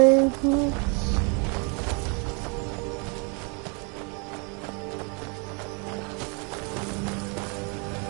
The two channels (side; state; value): left; quieter; 34.5 dB